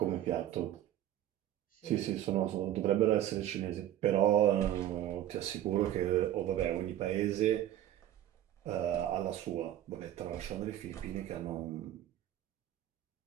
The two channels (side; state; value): left; quieter; 12.1 dB